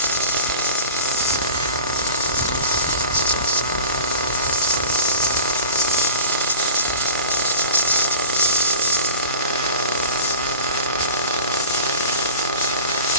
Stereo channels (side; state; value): both; inverted; correlation -0.38